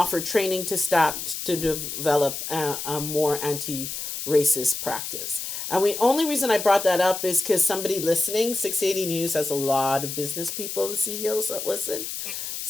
training to staff to develop a more racist practice. And the only reason I brought that up is because somebody listening, 680 News has a lot of business people and CEOs that listen.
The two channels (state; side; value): noise; left; hiss, 6 dB below the sound